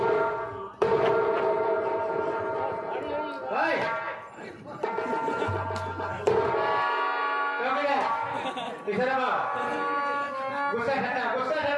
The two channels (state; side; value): identical; both; correlation 1.00